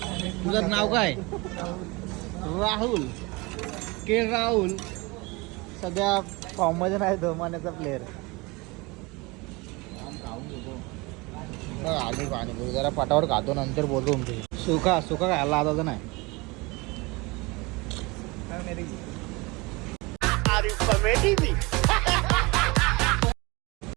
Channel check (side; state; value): left; quieter; 25.1 dB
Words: तुझं नाव काय. राहुल के राहुल. सध्या फॉर्ममध्ये नाही तो मान्याचा प्लेअर. खाऊन घेतो आले पाणी जरा पटावर खातो, नंतर बोलतो तुमचे. सुका खायला आता तर नाही.